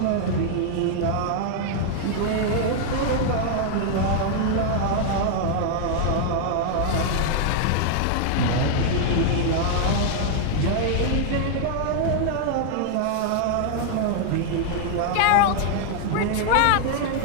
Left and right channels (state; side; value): different; both; correlation 0.00